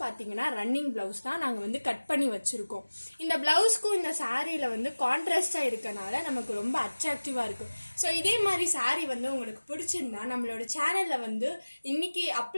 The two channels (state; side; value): inverted; both; correlation -1.00